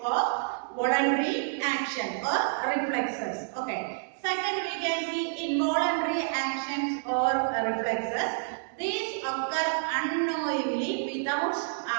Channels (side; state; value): left; silent; digital silence